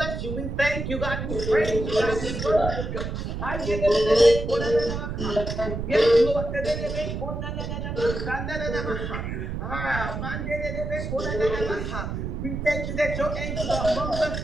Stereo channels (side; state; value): right; noise; rumble, 4 dB below the sound